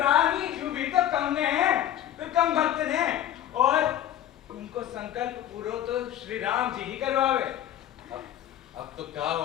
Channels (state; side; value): quieter; right; 11.6 dB